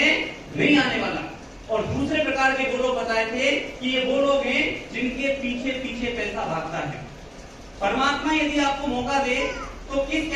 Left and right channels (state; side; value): identical; both; correlation 1.00